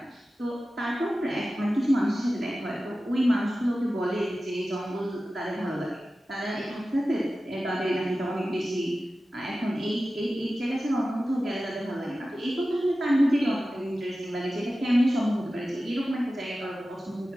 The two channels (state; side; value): normal; both; correlation 0.95